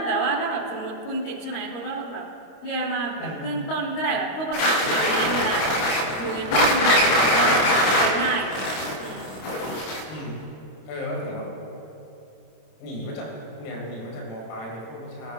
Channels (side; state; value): right; late; 26 ms